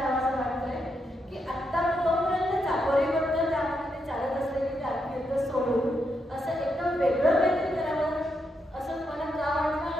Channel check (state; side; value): normal; both; correlation 0.82